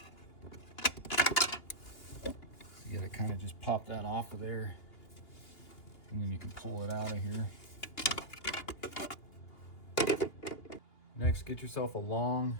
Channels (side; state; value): right; late; 3.0 ms